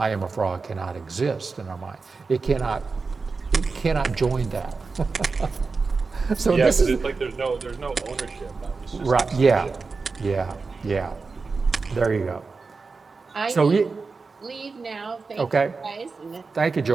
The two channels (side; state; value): left; quieter; 4.4 dB